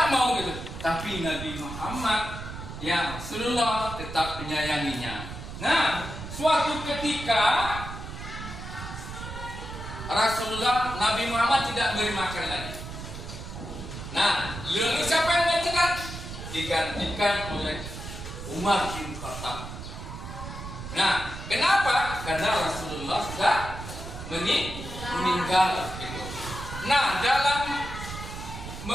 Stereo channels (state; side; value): noise; right; rumble, 9 dB below the sound